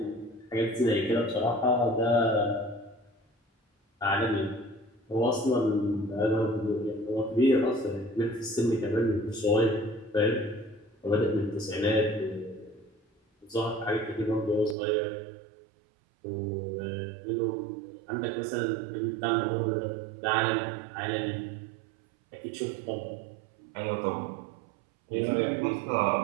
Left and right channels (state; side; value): drops out; left; at 14.8 s